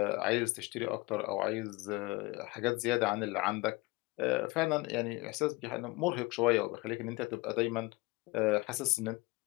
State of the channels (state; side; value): quieter; right; 23.8 dB